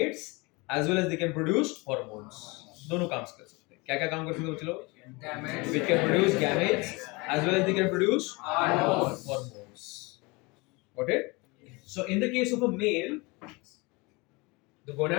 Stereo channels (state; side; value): quieter; right; 26.1 dB